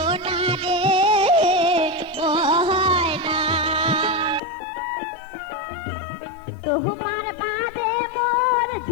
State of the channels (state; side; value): drops out; right; at 4.4 s